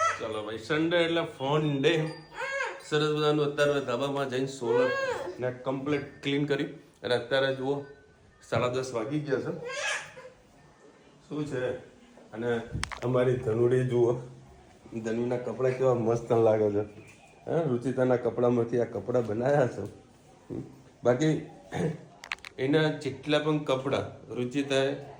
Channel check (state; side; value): identical; both; correlation 1.00